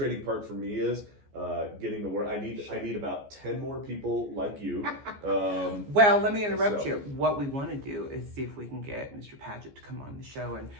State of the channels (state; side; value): late; left; 14 ms